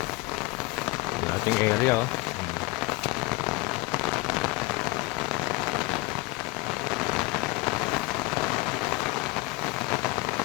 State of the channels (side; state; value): right; quieter; 22.1 dB